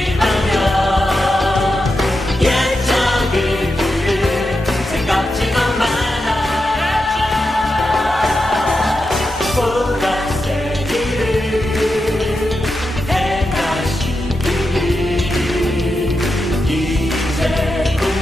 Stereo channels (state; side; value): normal; both; correlation 0.88